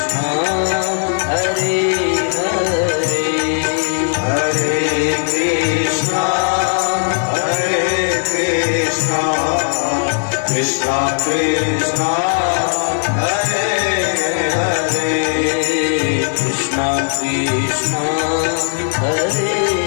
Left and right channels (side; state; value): right; silent; digital silence